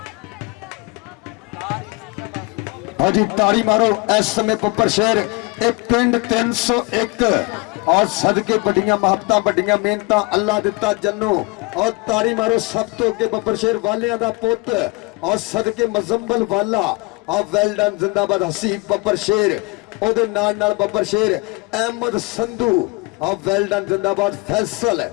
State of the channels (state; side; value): quieter; right; 26.7 dB